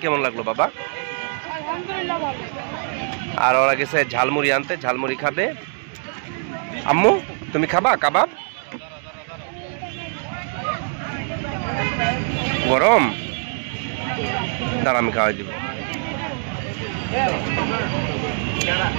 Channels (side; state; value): left; silent; digital silence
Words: কেমন লাগলো বাবা? আর ওরা গেছে ঝালমুড়ি আনতে, ঝালমুড়ি খাবে। আম্মু তুমি খাবা কাবাব? গরম? দাঁড়া আমি খাওয়াই দিব।